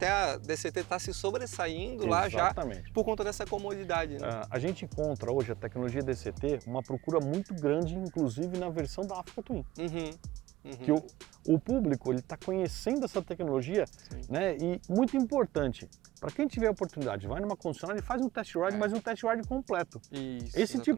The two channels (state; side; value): quieter; left; 16.4 dB